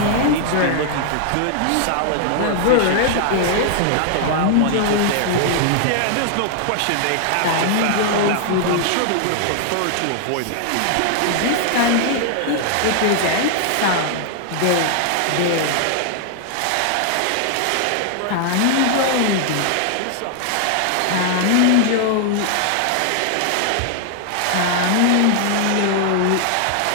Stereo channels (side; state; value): both; different; correlation 0.00